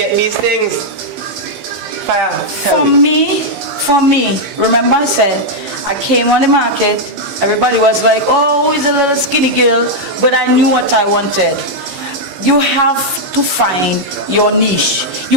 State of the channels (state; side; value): late; left; 15 ms